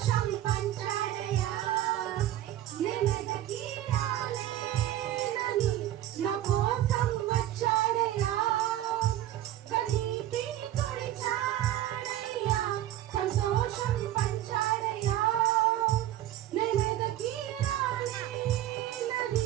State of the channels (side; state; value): left; quieter; 13.1 dB